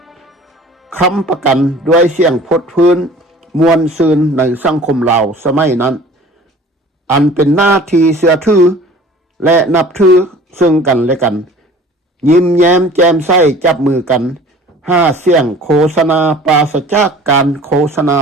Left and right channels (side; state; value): both; normal; correlation 0.47